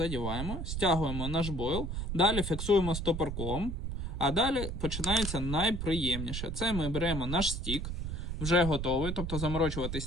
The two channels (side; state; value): right; noise; rumble, 4 dB below the sound